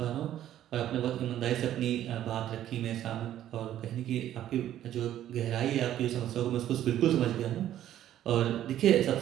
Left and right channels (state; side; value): quieter; left; 12.0 dB